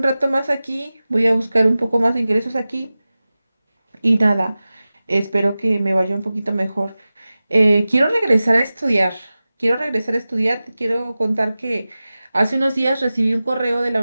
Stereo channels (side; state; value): both; inverted; correlation -0.96